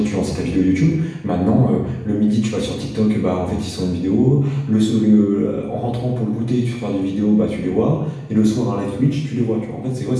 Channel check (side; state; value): both; identical; correlation 1.00